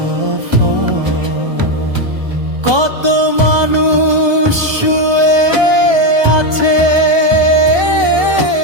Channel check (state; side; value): late; left; 1.2 ms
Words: কত মানুষ শুয়ে আছে